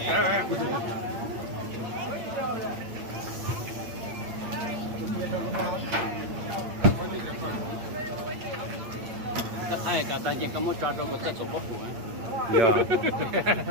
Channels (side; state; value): left; late; 8.8 ms